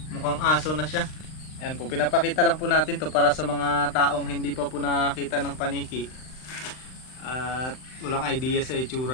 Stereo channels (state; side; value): late; right; 39 ms